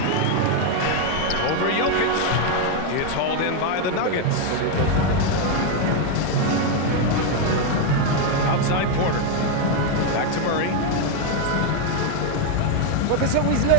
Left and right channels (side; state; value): both; different; correlation 0.01